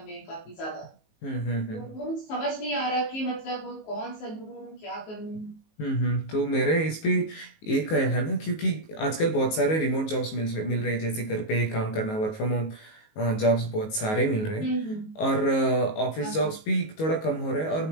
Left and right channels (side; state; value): right; late; 19 ms